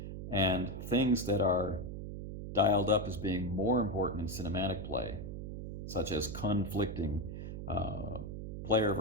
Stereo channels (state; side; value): noise; right; hum, 7 dB below the sound